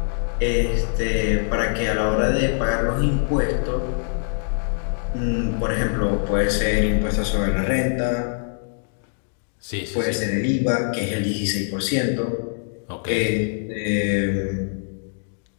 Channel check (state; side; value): silent; right; digital silence